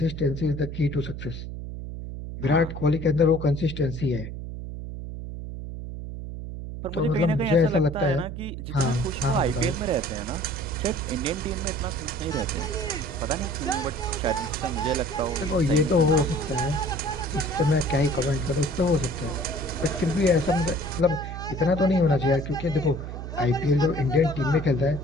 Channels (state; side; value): noise; right; hum, 8 dB below the sound